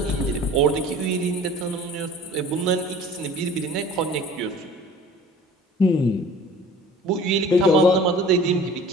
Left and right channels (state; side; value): normal; both; correlation 0.46